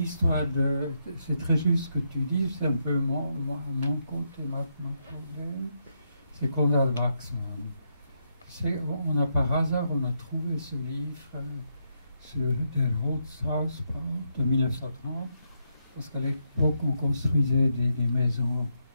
c'est très juste ce que tu dis, c'est un peu mon côté, mon problème, c'est Konrad Waxman. Par hasard, on a trouvé ce livre sur Der Holzhausbau de 1930, parce qu'à l'époque, on construisait des maisons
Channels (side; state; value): both; inverted; correlation -0.80